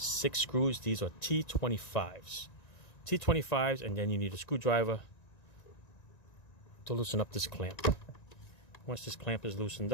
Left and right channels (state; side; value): late; right; 1.9 ms